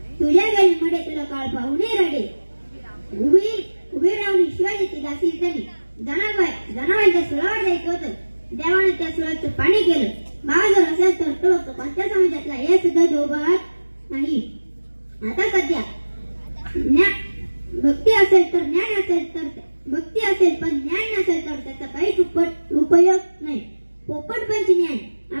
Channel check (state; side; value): inverted; both; correlation -1.00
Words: तुझ्या गेले मध्ये तुला काळ पाहुणे रडे. उभी राहून शिवाजीची दासी झाली. जनावरांच्या सुळावर जायचं होतं. देवाने त्या सुळाचं पाणी केलं. भाव जर असेल तर तो कोणत्या समाजातला हे सुद्धा दोघात नाही. आता सध्या भक्ती असेल तर ज्ञान असेल तर भक्ती असेल पण ज्ञान नसेल तर त्याचा काहीच उपयोग नाही. पोपटपंची ज्ञान